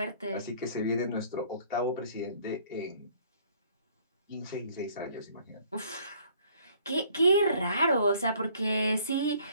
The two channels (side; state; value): both; inverted; correlation -0.58